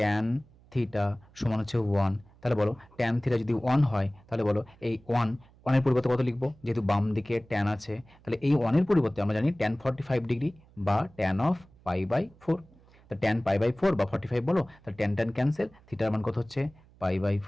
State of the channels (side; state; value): right; noise; hum, 27 dB below the sound